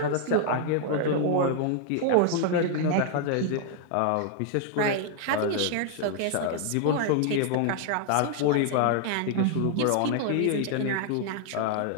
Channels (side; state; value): both; different; correlation 0.00